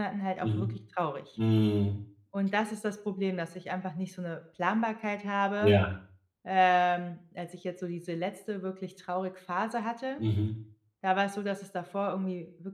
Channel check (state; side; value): identical; both; correlation 1.00